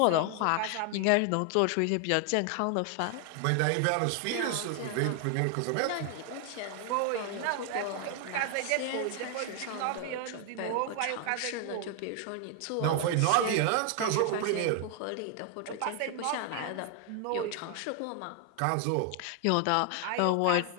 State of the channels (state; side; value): different; both; correlation 0.00